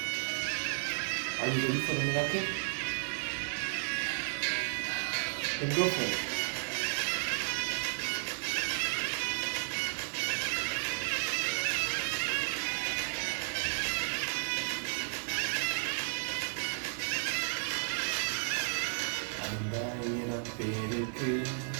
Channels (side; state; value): left; silent; digital silence